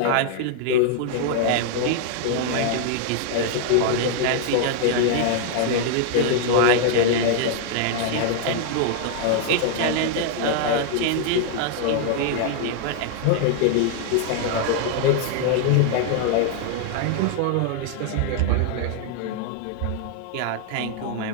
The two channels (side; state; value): both; different; correlation 0.00